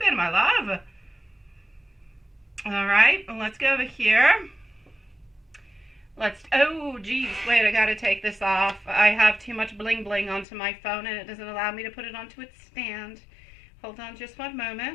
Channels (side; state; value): right; drops out; at 10.5 s